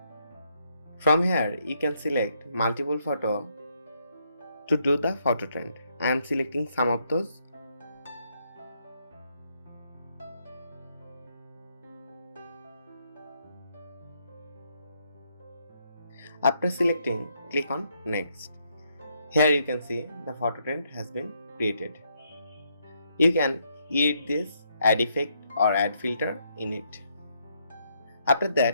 From here you can select multiple photo to do the photo trend. I am selecting some of those. After selecting, click on next. Here you can see the photo trend has been created. You can edit this, add effect or add filter in it. After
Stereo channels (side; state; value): both; inverted; correlation -0.75